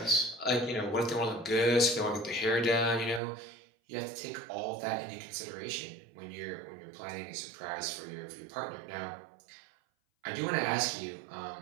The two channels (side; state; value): left; drops out; at 3.2 s